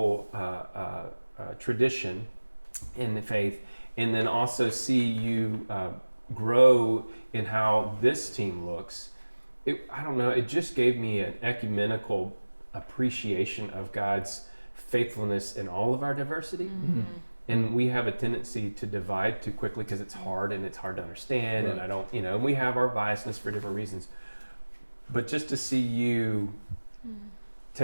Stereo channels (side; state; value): both; inverted; correlation -1.00